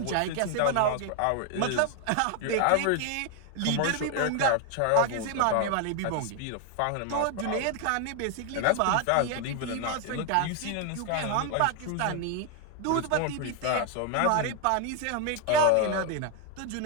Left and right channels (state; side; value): different; both; correlation 0.00